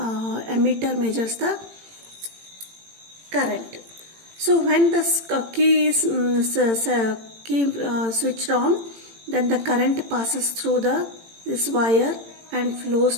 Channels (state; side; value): late; left; 18 ms